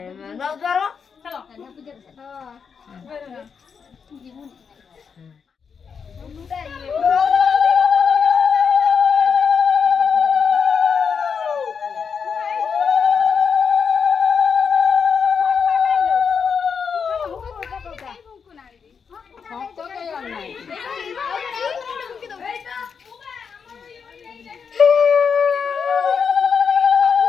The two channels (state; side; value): quieter; right; 6.3 dB